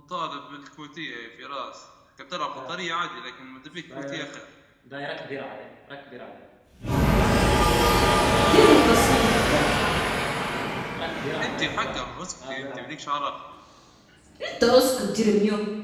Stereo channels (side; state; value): both; identical; correlation 1.00